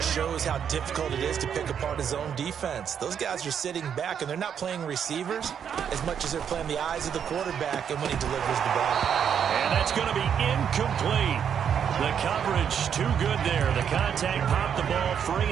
shows how difficult it is to pick apart his own defense. Those guys are sitting back, and they're not playing receivers as much as they're playing the eyes of the quarterback and when he delivers the ball. And that's going to be incomplete. The coverage too good there. The contact popped the ball free,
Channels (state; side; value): quieter; left; 8.1 dB